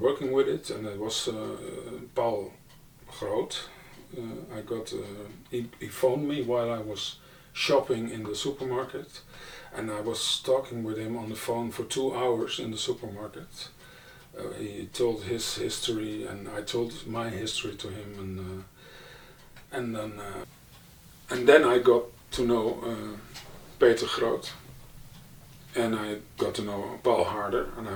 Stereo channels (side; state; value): both; identical; correlation 1.00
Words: with it, and it was Paul Groot. He phoned me while I was shopping in the supermarket, and I was talking with him on the phone for 2 hours in the supermarket. He told his history, and I told my history to him, and then I got to know Peter Groot, and I got to know Paul Harder, and I